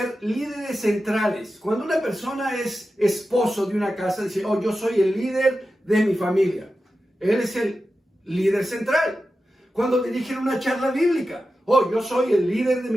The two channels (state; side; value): normal; both; correlation 0.92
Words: líderes centrales. Cuando una persona es esposo de una casa, dice, oh, yo soy el líder de mi familia. Él es el líder central. Cuando dirigen una charla bíblica, oh, yo soy el líder de